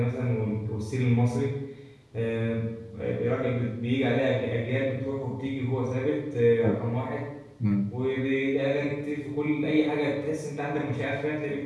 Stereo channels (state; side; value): identical; both; correlation 1.00